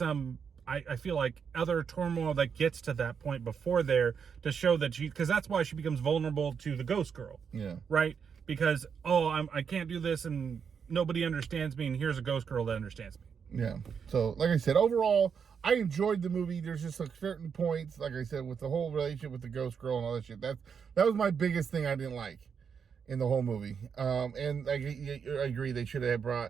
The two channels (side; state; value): left; quieter; 6.7 dB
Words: I feel like other turmoil that gets to that point before there to show that because that's why she becomes vulnerable to the ghost girl. Yeah. Right? Because, I can't do this and nobody understands me, and here's a ghost girl that understands me. Yeah. So, like I said, overall, I enjoyed the movie. There's just like certain points, like I said, with the whole relationship with the ghost girl and all that shit. That was my biggest thing I didn't like in the whole movie. And I agree, they should have